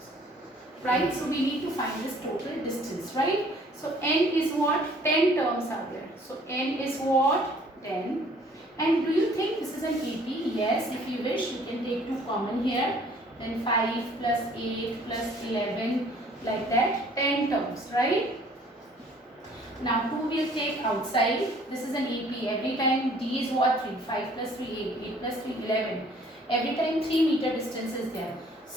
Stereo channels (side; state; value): both; normal; correlation 0.57